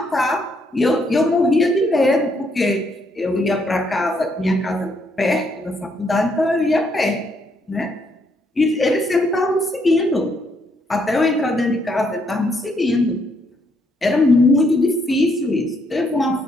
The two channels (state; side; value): normal; both; correlation 0.73